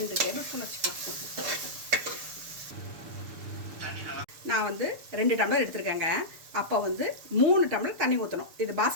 டேபிள் ஸ்பூன் வச்சுக்கோங்க. நான் வந்து 2 டம்ளர் எடுத்துருக்கேங்க. அப்போ வந்து 3 டம்ளர் தண்ணி ஊற்றணும். இது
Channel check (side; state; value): left; late; 6.8 ms